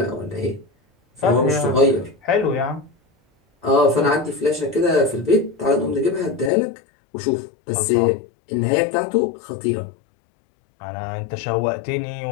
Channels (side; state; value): right; drops out; at 6.5 s